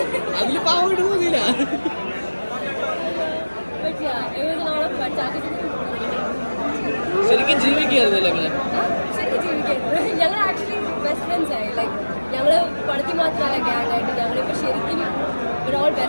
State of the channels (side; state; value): both; inverted; correlation -1.00